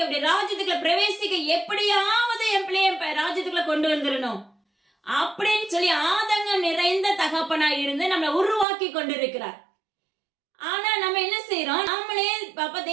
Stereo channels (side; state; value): left; drops out; at 8.7 s